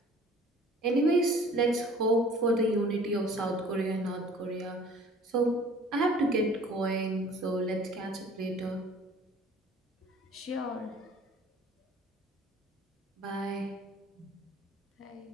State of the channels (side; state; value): both; normal; correlation 0.50